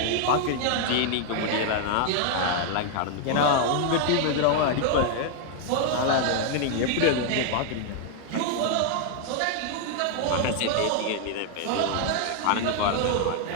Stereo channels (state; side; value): different; both; correlation 0.00